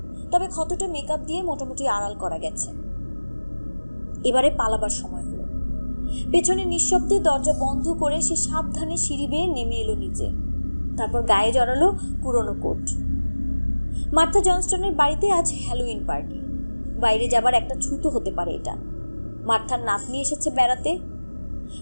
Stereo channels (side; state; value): both; inverted; correlation -1.00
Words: তবে ক্ষতটা মেকআপ দিয়ে মোটামুটি আড়াল করা গেছে। এবারে পালাবার সময় হলো। পেছনে নিঃশব্দে দরজা বন্ধ করে সে সাবধানে সিঁড়ি বেয়ে নেমে এলো নিচে। তারপর গায়ে জড়ালো পুরনো কোট। মার্থা জনস্টনের বাড়িতে আজ হ্যালোউইন পার্টি। বাইরে যাবার একটা ছুতো হতে পারে এটা। মার্থার নাতনি এসেছে বেড়াতে,